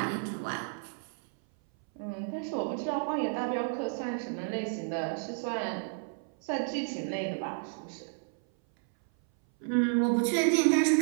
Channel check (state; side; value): silent; left; 57 dB below the other